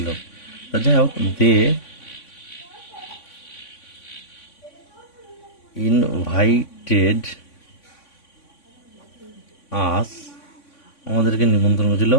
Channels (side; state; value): right; late; 3.5 ms